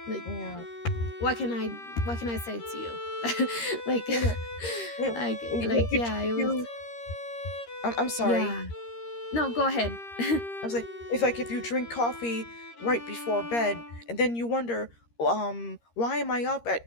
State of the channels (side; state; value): right; late; 13 ms